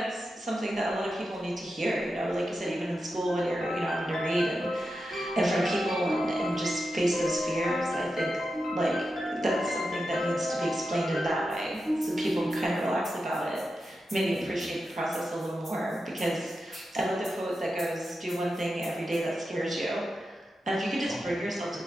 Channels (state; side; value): normal; both; correlation 0.90